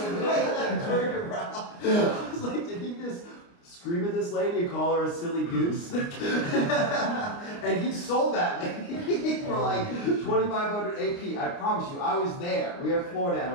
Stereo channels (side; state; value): right; late; 29 ms